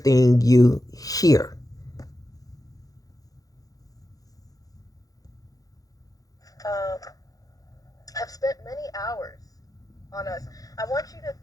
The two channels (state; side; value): late; right; 0.17 ms